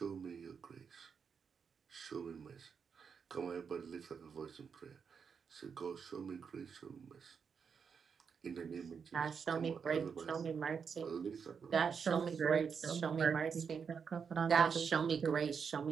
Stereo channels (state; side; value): quieter; left; 6.3 dB